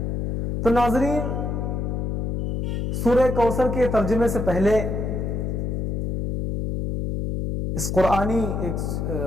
تو ناظرین سورہ کوثر کے ترجمے سے پہلے اس قرآنی ایک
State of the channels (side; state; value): left; noise; hum, 1 dB below the sound